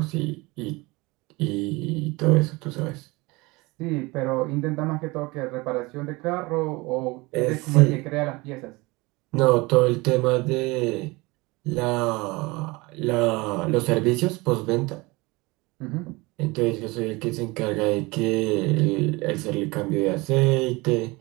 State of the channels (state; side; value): quieter; left; 23.6 dB